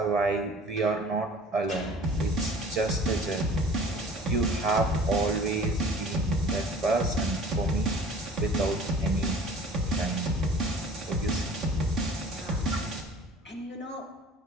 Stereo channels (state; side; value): normal; both; correlation 0.47